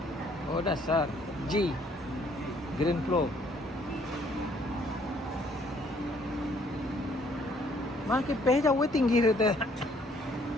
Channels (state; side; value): normal; both; correlation 0.63